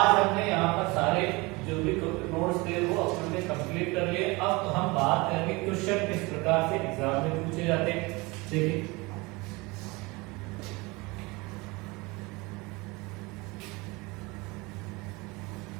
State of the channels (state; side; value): quieter; left; 24.6 dB